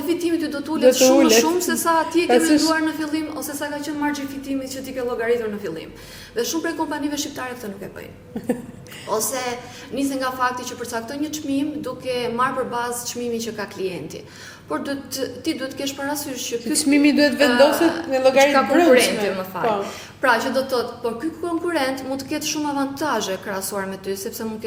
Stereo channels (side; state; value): both; identical; correlation 1.00